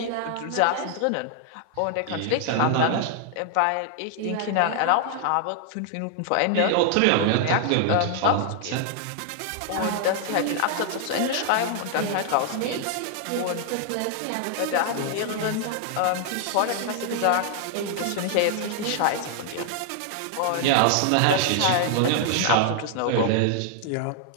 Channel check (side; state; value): both; different; correlation 0.00